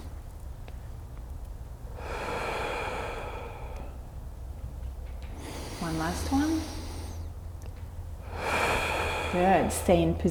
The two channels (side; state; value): both; identical; correlation 1.00